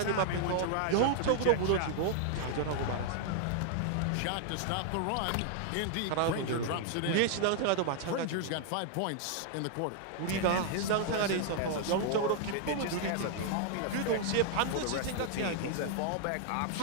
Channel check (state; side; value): different; both; correlation 0.00